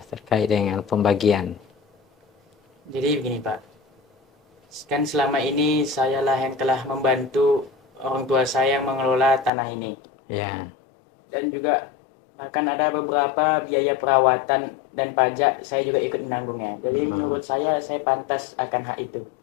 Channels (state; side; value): drops out; right; at 9.5 s